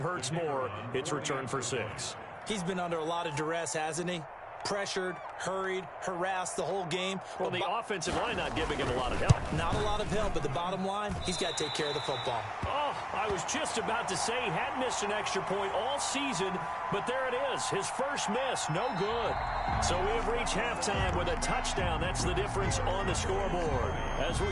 more. It's returned for 6. He's been under a lot of duress, hasn't he? Pressured, hurried, harassed the whole game. Well, the offensive line not giving him a lot of help. Not a lot of help, but the bottom line, he's got to take care of the football. Oh, I was just about to say he hadn't missed an extra point all season, but there it is. His first miss, no good. So we have reached halftime with a touchdown. That's the difference on the scoreboard. As we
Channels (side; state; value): both; identical; correlation 1.00